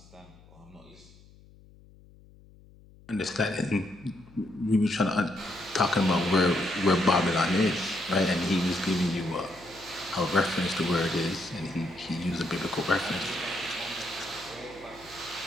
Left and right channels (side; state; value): left; noise; hum, 24 dB below the sound